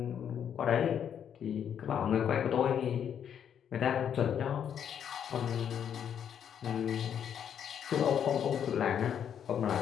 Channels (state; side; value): quieter; right; 8.7 dB